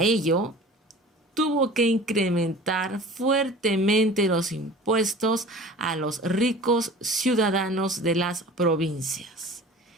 ello tuvo que incrementar fuertemente los impuestos a los ricos ciudadanos de las provincias.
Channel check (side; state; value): both; normal; correlation 0.41